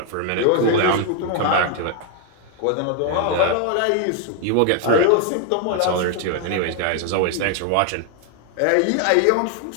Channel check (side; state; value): both; different; correlation 0.00